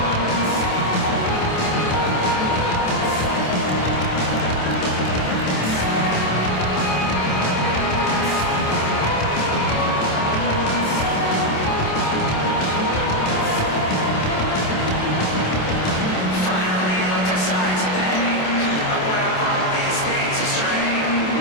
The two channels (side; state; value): right; late; 26 ms